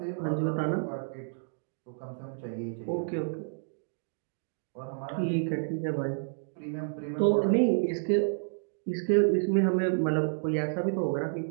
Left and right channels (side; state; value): left; silent; digital silence